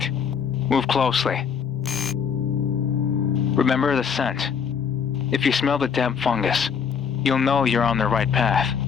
Move closely. Remember the scent. If you smell the damp fungus, you'll know you're on the right path.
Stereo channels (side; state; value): right; quieter; 6.8 dB